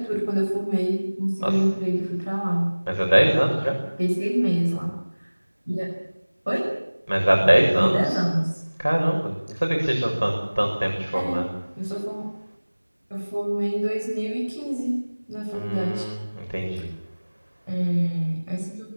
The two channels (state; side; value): inverted; both; correlation -1.00